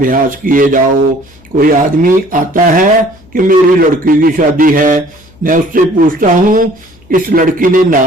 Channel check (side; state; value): left; noise; hum, 28 dB below the sound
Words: किए जाओ। कोई आदमी आता है कि मेरी लड़की की शादी है, मैं उससे पूछता हूँ इस लड़की ने